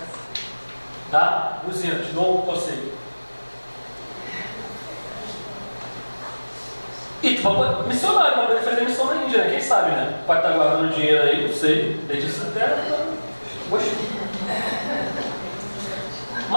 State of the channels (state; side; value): inverted; both; correlation -1.00